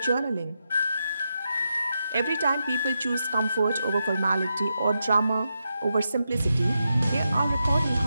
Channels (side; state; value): both; inverted; correlation -0.86